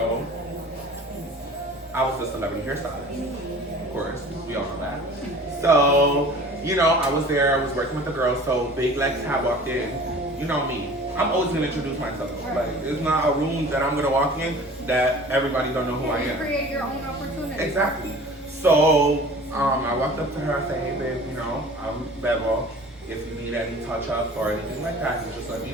I was the celebrity hairstylist. Of course, we all know that. So, you know, I was there, I was working with the girls, so Big Lex had walked in. You know me. I'm always gonna introduce myself. Like, it's not a room that I'm gonna walk in that everybody don't know who I am. Create your own opportunity. Exactly. So, I walked up to her, I said, hey babe, you know, I'm BEBO. If you need any touch-ups or anything like that, you just let me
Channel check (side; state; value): both; normal; correlation 0.44